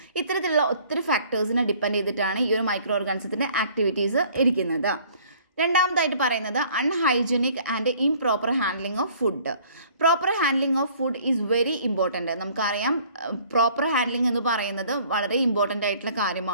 ഇത്തരത്തിലുള്ള ഒത്തിരി ഫാക്ടേഴ്സിനെ ഡിപ്പെൻഡ് ചെയ്തിട്ടാണ് ഈ ഒരു മൈക്രോ ഓർഗാനിസത്തിൻ്റെ ആക്ടിവിറ്റീസ് ഇരിക്കുന്നത്. രണ്ടാമതായിട്ട് പറയുന്നത് unhygienic and improper handling of food. Proper handling of food is very important. നമുക്കറിയാം പ്രോപ്പർ ഹാൻഡ്ലിംഗ് എന്ന് പറയുന്നത് വളരെ ഇമ്പോർട്ടൻ്റ് ആയിട്ടുള്ള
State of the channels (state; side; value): inverted; both; correlation -0.55